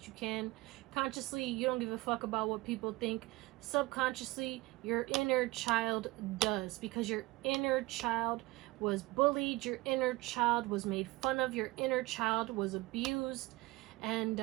you can. Consciously, you don't give a fuck about what people think. Subconsciously, your inner child does, because your inner child was bullied, your inner child was made fun of, your inner child was abused, and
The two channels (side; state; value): left; quieter; 21.0 dB